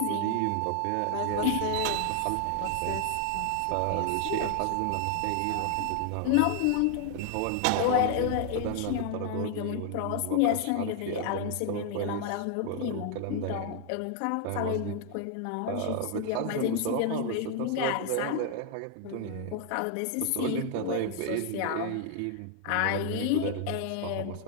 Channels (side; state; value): both; different; correlation 0.00